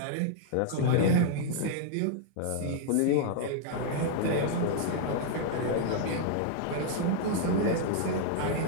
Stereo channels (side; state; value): both; different; correlation -0.01